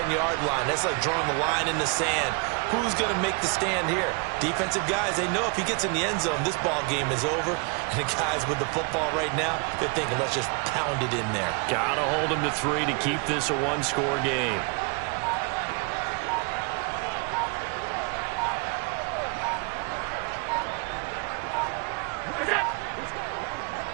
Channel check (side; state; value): left; quieter; 32.6 dB